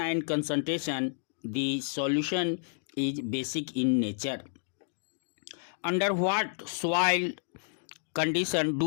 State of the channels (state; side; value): silent; right; digital silence